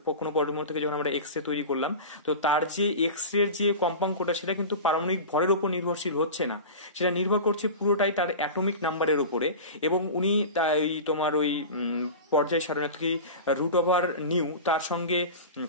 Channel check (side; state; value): both; inverted; correlation -0.30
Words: কোনো পরমাণু থেকে যখন আমরা এক্স রে তৈরি করলাম, তো তার যে এক্স রে যে কম্পাঙ্কটা সেটা কিন্তু পারমাণবিক ভরের উপর নির্ভরশীল হচ্ছে না, সেটা নির্ভর করছে পুরোটাই তার অ্যাটমিক নাম্বারের উপরে। এবং উনি তোমার ওই পর্যায় সারণী কি রুট ওভার নিউ তার সঙ্গে